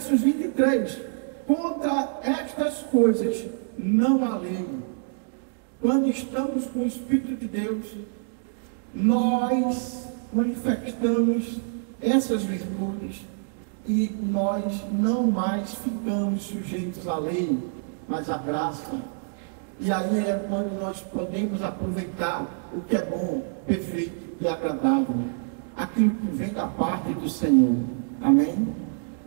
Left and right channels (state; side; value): silent; left; digital silence